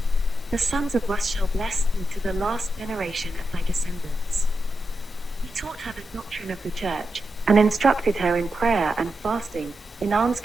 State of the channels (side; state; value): both; normal; correlation 0.88